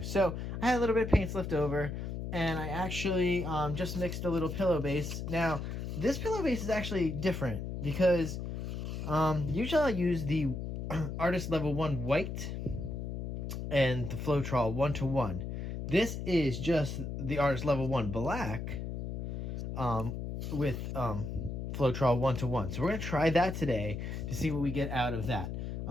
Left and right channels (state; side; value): noise; left; hum, 5 dB below the sound